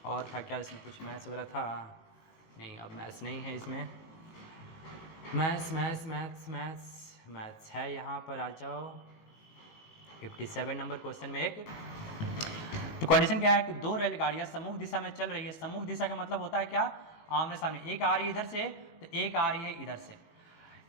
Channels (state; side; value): late; right; 18 ms